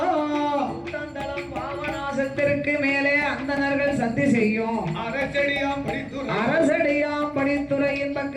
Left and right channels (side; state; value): both; identical; correlation 1.00